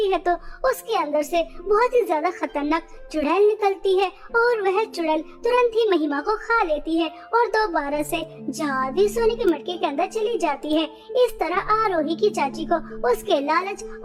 है तो उसके अंदर से बहुत ही ज्यादा खतरनाक चुड़ैल निकलती है और वह चुड़ैल तुरंत ही महिमा को खा लेती है और दोबारा से जादू सोने के मटके के अंदर चली जाती है। इस तरह आरोही की चाची को उसके लालच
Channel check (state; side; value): identical; both; correlation 1.00